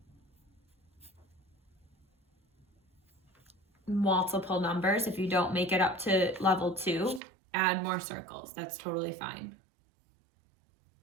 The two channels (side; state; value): left; drops out; at 7.2 s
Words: multiple numbers, if you don't make it up to level 2, add more circles. That's totally fine.